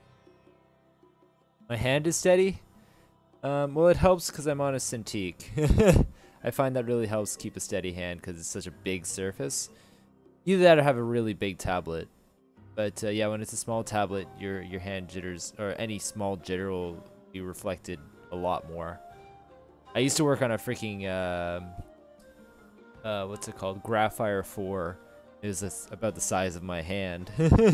My hand is steady. Well, it helps because I'm on a Cintiq. I find that really helps keep a steady hand because it's such a big surface. Either that or have a really big tablet. But yeah, when it's a small tablet, your hand jitters, or any small jitter will be reflected a lot more. I used to work on a freaking, what's it called? Graphire 4. It was about the size of my hand.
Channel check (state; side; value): identical; both; correlation 1.00